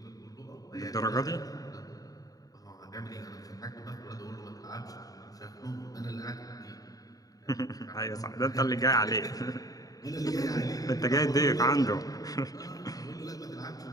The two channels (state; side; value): late; right; 0.18 ms